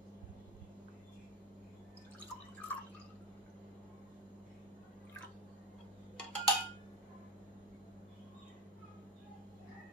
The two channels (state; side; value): normal; both; correlation 0.19